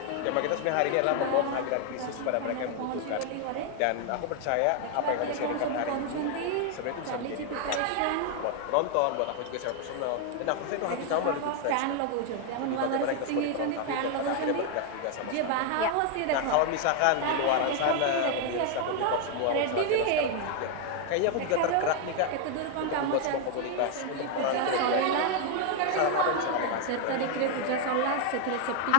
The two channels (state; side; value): different; both; correlation 0.00